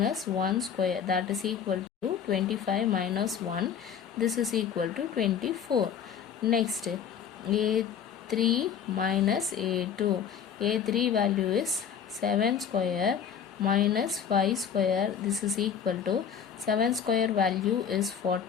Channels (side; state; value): right; quieter; 7.8 dB